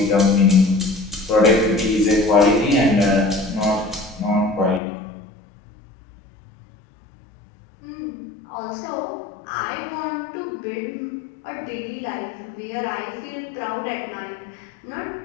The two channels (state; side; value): drops out; right; at 4.8 s